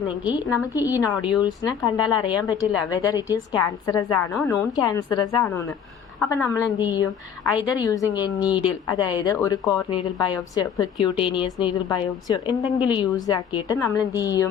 നമുക്ക് ഈ നോഡ്യൂൾസിനെ കണ്ടാൽ അറിയാൻ പറ്റില്ല വെദർ ഇറ്റ് ഈസ് ക്യാൻസറസ് ആണോ നോൺ ക്യാൻസറസ് ആണോ എന്ന്. അപ്പം നമ്മൾ എന്ത് ചെയ്യും, ഐദർ യൂസിങ് എ നീഡിൽ അതായത് ഒരു കോർ നീഡിൽ ബയോപ്സിയോ പെർക്യൂട്ടേനിയസ് നീഡിൽ ബയോപ്സിയോ എന്തെങ്കിലും യൂസ് ആക്കിയിട്ട് നമ്മൾ എന്ത്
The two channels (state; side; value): quieter; right; 7.8 dB